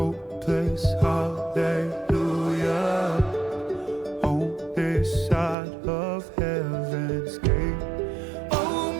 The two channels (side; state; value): left; drops out; at 5.6 s